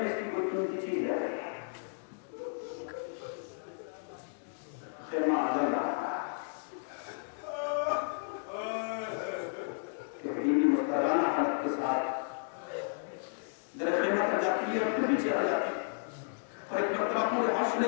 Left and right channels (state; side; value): silent; right; digital silence